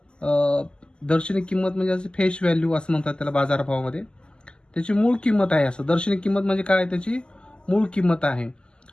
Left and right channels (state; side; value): late; right; 0.048 ms